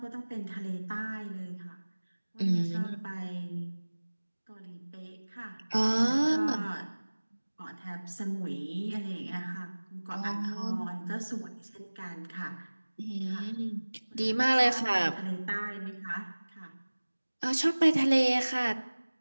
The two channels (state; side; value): inverted; both; correlation -1.00